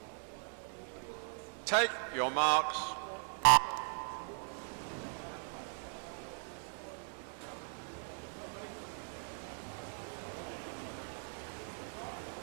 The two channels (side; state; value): left; silent; 52 dB below the other